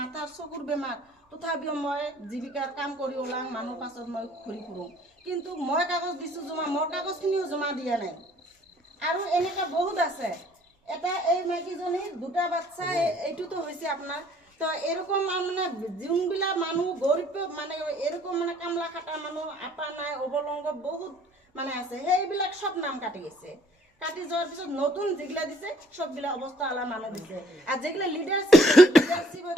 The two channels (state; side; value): normal; both; correlation 0.60